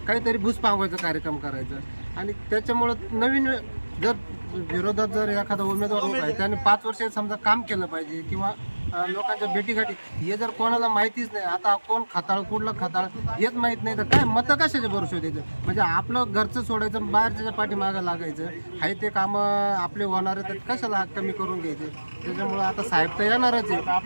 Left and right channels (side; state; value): both; inverted; correlation -1.00